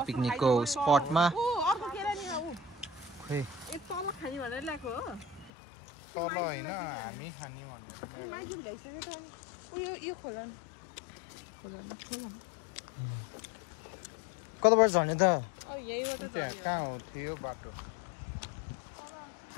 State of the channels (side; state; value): right; drops out; at 5.5 s